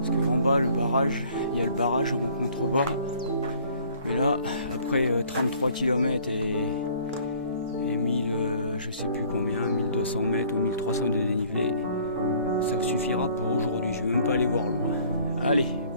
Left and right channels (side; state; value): both; inverted; correlation -0.55